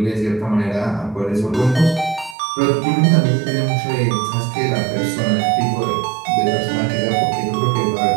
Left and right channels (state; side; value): drops out; left; at 2.4 s